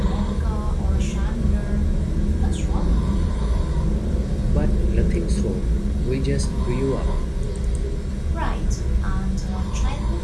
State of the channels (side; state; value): both; identical; correlation 1.00